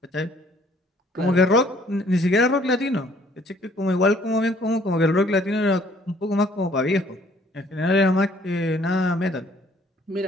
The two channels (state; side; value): normal; both; correlation 0.60